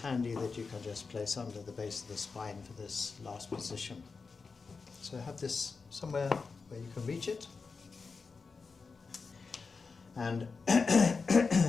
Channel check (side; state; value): right; quieter; 4.7 dB